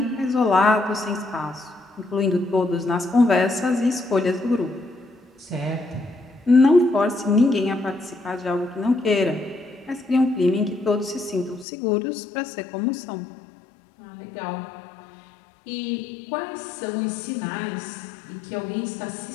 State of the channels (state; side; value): drops out; right; at 11.7 s